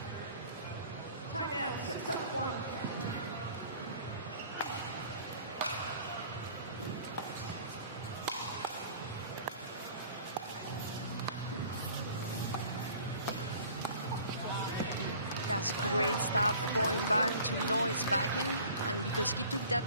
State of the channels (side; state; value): both; inverted; correlation -0.48